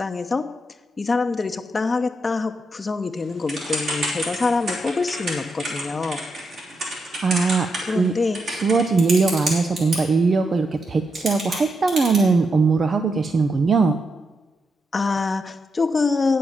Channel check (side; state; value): both; normal; correlation 0.83